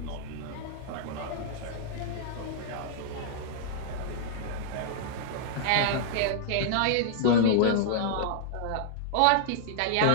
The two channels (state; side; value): different; both; correlation -0.01